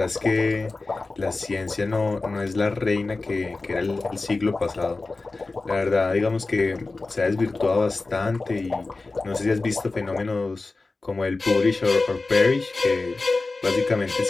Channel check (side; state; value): right; quieter; 3.5 dB